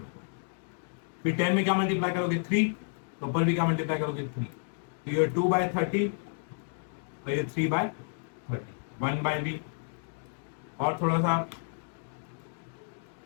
फिर 10 में क्या मल्टीप्लाई करोगे 3, तो ऊपर भी क्या मल्टीप्लाई करोगे 3, तो ये 2/30 और ये 3/30, 1/b। और थोड़ा सा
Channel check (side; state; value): right; silent; digital silence